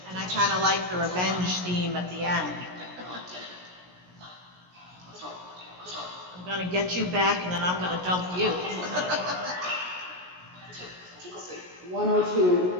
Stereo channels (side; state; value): left; late; 17 ms